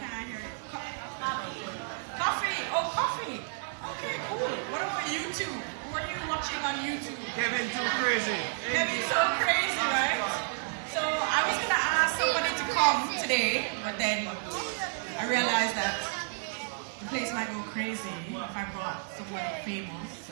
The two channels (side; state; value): left; silent; 57 dB below the other